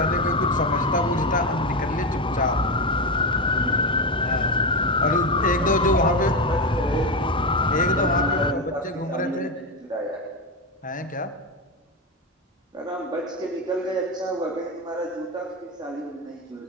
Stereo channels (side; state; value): both; normal; correlation 0.14